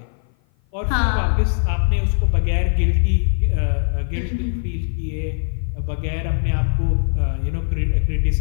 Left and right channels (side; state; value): right; silent; 55 dB below the other